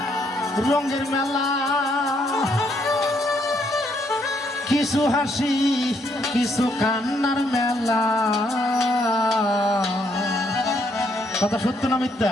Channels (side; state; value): both; normal; correlation 0.72